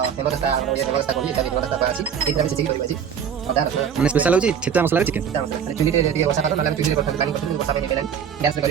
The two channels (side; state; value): left; quieter; 7.8 dB